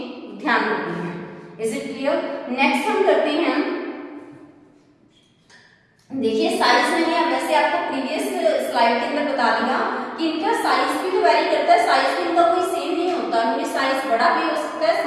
ध्यान रखनी है। Is it clear? नेक्स्ट हम करते हैं, देखिए साइज मैंने वैसे आपको प्रीवियस स्लाइड के अंदर बता दिया कि इनका साइज भी तो वेरी करता है, साइज भी इनका कोई सेम नहीं होता, इनमें साइज बड़ा भी हो सकता है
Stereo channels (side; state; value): both; identical; correlation 1.00